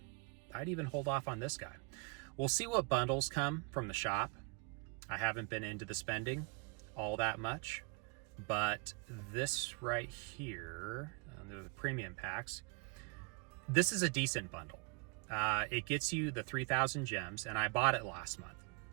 I'd even hold off on this guy. We'll see what bundles come from the shop. I haven't been into the spending all that much, but this right here, the premium packs, this is a decent bundle. It gets you the 3,000 gems, and I bought it last month,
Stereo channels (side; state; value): left; quieter; 31.6 dB